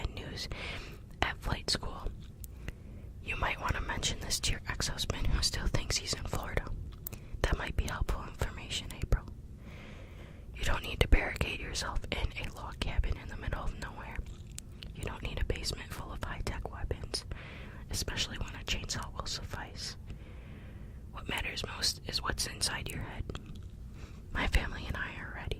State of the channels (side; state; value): both; identical; correlation 1.00